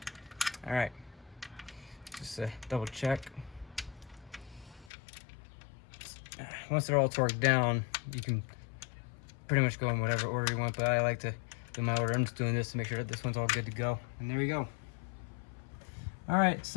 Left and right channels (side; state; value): right; drops out; at 4.9 s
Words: All right, just double check. Once they're all torqued down, you can pretty much go in whatever order you want, but I like to do my order. I'm just doing this to make sure that this one's all good to go. And there we go. All right,